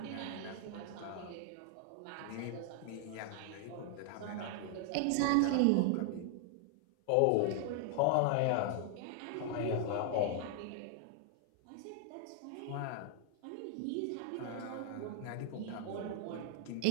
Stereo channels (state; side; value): different; both; correlation 0.00